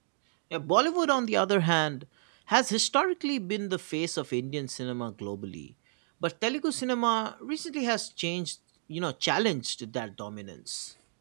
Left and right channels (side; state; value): left; silent; digital silence